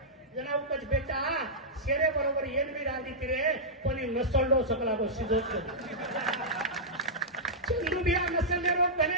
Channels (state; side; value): normal; both; correlation -0.10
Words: जनाव कच बेटा शेरे बरोबर येन भी रांधी तिरे कोणी नसळलो सकला गो शिजवतो चंदू बिया नसलले लोक